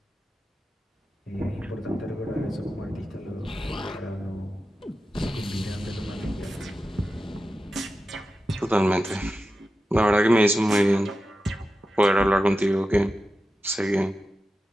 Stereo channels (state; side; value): normal; both; correlation 0.92